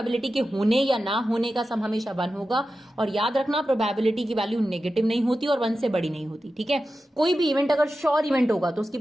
के होने या ना होने का सम हमेशा 1 होगा, और याद रखना प्रोबेबिलिटी की वैल्यू नेगेटिव नहीं होती और 1 से बड़ी नहीं होती। ठीक है, कोई भी इवेंट अगर श्योर इवेंट होगा तो उसकी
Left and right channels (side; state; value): both; normal; correlation 0.92